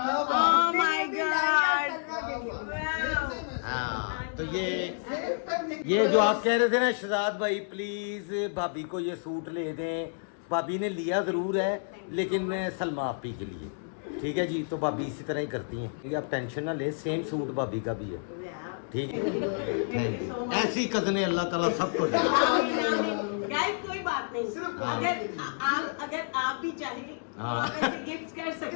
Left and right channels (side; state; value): right; silent; digital silence